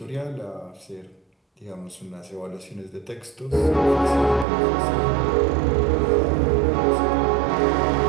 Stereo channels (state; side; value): drops out; left; at 4.5 s